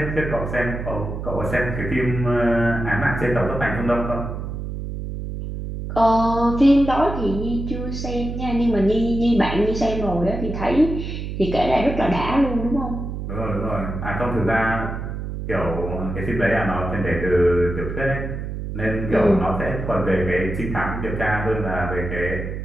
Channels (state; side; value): noise; right; hum, 6 dB below the sound